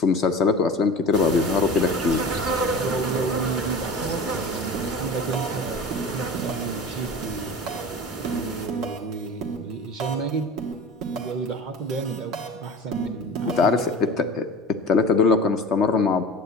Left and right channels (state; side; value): normal; both; correlation 0.35